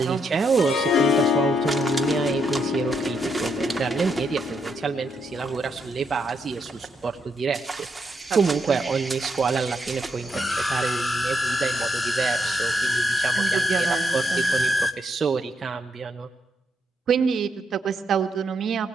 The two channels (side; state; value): both; normal; correlation 0.78